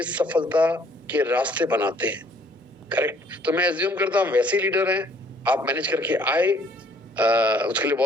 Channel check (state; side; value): normal; both; correlation 0.61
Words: सफलता के रास्ते बनाते हैं। करेक्ट। तो मैं एज्यूम करता हूँ वैसे लीडर हैं, आप मैनेज करके आए, उसके लिए